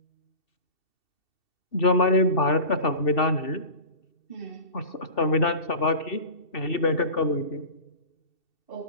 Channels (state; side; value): late; right; 2.7 ms